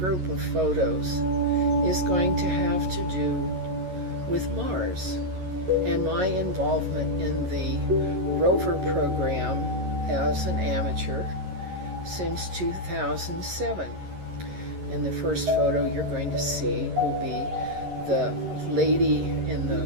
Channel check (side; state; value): left; late; 11 ms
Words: of photos is going to have to do with Mars and my involvement in the Rover program as an amateur since 2007. And the first photo you're going to see will be the lady